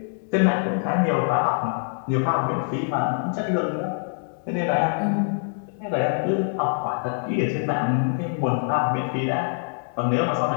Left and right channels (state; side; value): silent; right; 62 dB below the other